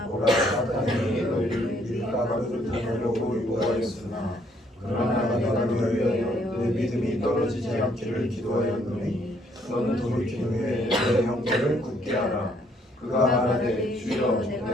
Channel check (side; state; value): both; normal; correlation 0.67